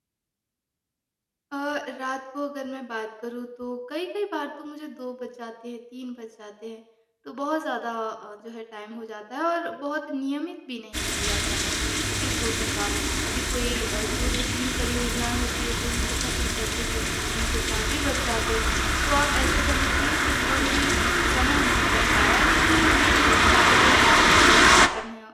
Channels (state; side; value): identical; both; correlation 1.00